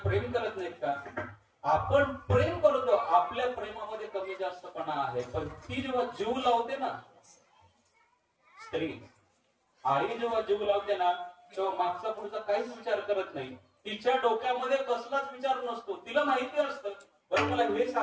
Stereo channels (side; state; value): both; identical; correlation 1.00